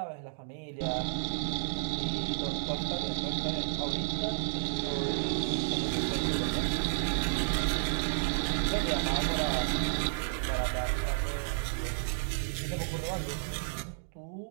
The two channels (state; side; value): silent; left; digital silence